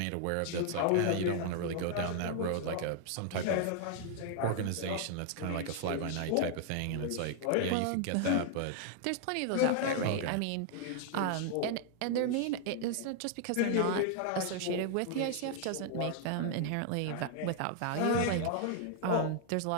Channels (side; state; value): both; different; correlation 0.00